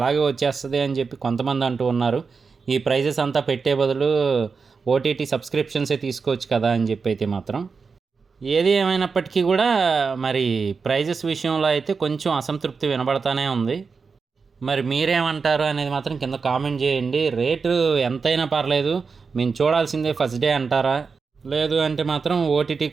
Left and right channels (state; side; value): quieter; left; 5.0 dB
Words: వచ్చేస్తుంది అని చెప్పి కొంతమంది అంటూ ఉన్నారు. ఈ ప్రైజెస్ అంతా పెట్టే బదులు ఓటీటీ సబ్స్క్రిప్షన్సే తీసుకోవచ్చు కదా అని చెప్పి అయితే మాత్రం. ఏది ఏమైనప్పటికీ కూడా మరి ప్రైజెస్ విషయంలో అయితే కొంచెం అసంతృప్తి వినబడతానే ఉంది. మరి మీరేమంటారు అనేది మాత్రం కింద కామెంట్ చేయండి. రేటు ఎంతైనా పర్లేదు, మేము చూడాల్సిందే ఫస్ట్ డే అంటారా, లేదు అంటే మాత్రం ఓటీటీ